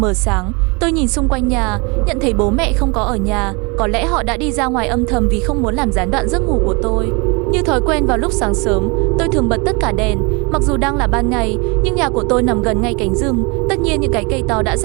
sáng. Tôi nhìn xung quanh nhà, nhận thấy bố mẹ không có ở nhà. Có lẽ họ đã đi ra ngoài âm thầm vì không muốn làm gián đoạn giấc ngủ của tôi. Như thói quen vào lúc sáng sớm, tôi thường bật tất cả đèn. Mặc dù đang là ban ngày, nhưng nhà của tôi nằm gần ngay cánh rừng. Tất nhiên những cái cây to đã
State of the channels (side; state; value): left; quieter; 29.4 dB